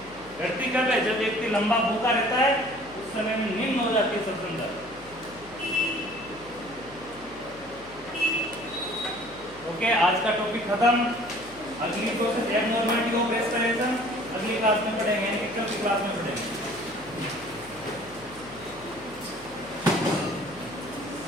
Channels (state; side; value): noise; left; hum, 21 dB below the sound